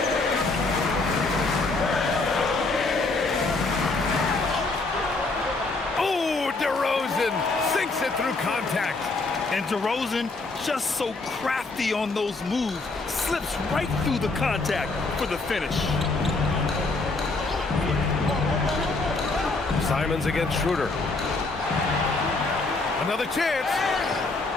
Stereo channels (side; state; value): right; quieter; 3.5 dB